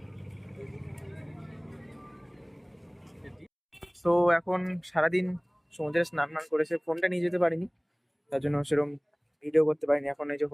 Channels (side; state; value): both; identical; correlation 1.00